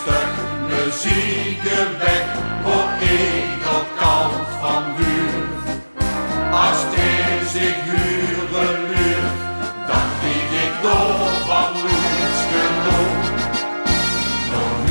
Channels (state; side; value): inverted; both; correlation -1.00